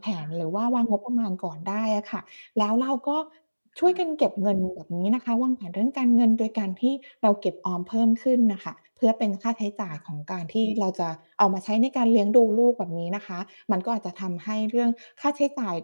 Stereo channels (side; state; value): both; inverted; correlation -1.00